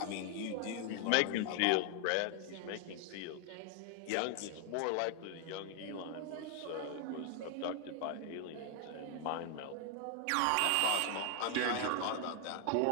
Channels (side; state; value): both; different; correlation 0.00